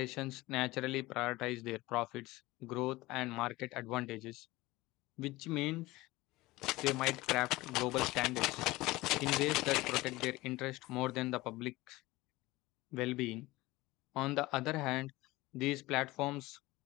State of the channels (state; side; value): quieter; right; 19.8 dB